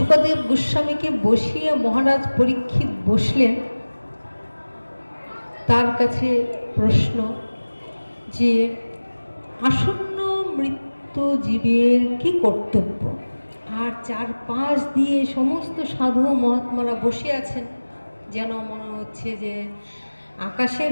গোস্বামীকে বসিয়ে মহারাজ পরীক্ষিত বসলেন। তার কাছে প্রশ্ন যে আসন্ন মৃত্যু জীবের কি কর্তব্য? আর চারপাশ দিয়ে সমস্ত সাধু মহাত্মারা বসে আছেন, যেন মনে হচ্ছে যে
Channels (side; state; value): both; inverted; correlation -1.00